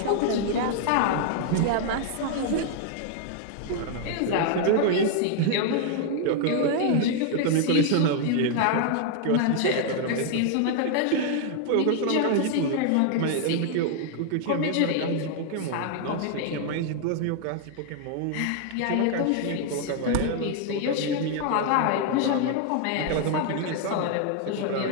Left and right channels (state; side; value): different; both; correlation 0.00